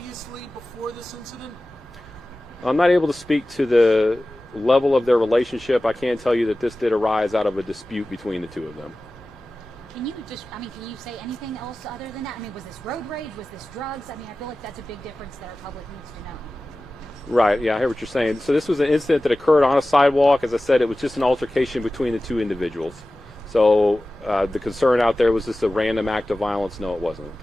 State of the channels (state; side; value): normal; both; correlation 0.96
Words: before this incident? I'm not able to speak to the level of their relationship. I can tell you that this did arise out of a dispute between the two of them. Can you say anything else other than that? I mean, was this road rage? Was this drugs? I mean, I feel like that's a big difference that our public needs to know. Right, yeah, I hear what you're saying. So this was an incident that occurred on a sidewalk. As I said, it was just an altercation between the two individuals. So the concern out there, was this a random act of violence? No, it wasn't.